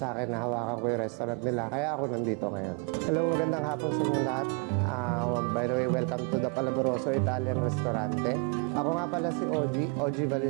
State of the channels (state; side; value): quieter; left; 35.3 dB